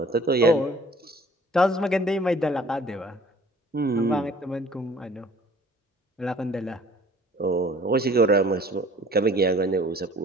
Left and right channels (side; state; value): both; normal; correlation 0.52